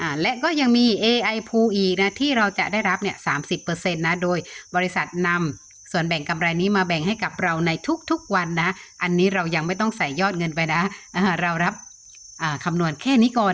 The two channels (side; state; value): both; identical; correlation 1.00